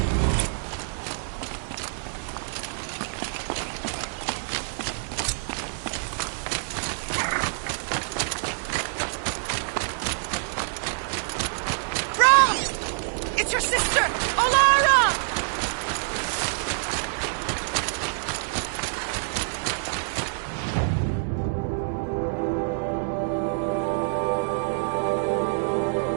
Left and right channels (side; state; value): left; silent; 61 dB below the other